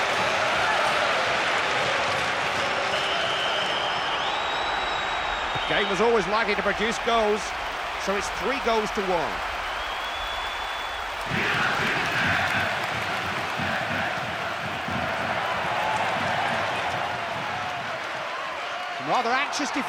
Game was always likely to produce goals, so it's 3 goals to 1. Rather anxious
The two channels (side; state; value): both; identical; correlation 1.00